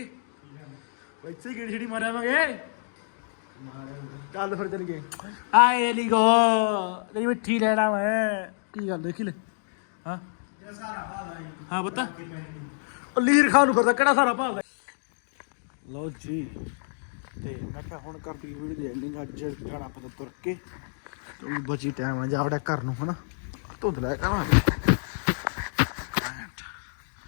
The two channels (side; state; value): right; silent; digital silence